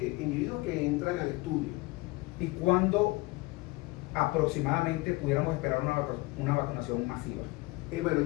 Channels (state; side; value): quieter; right; 22.4 dB